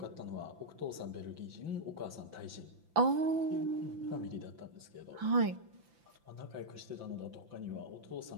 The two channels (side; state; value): left; late; 5.9 ms